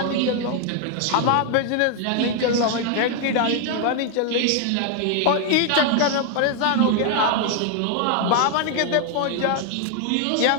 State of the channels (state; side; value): different; both; correlation 0.00